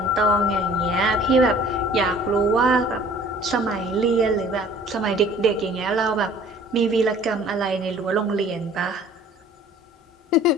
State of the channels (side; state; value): both; normal; correlation 0.51